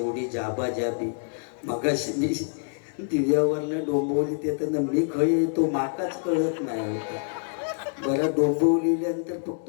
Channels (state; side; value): silent; right; digital silence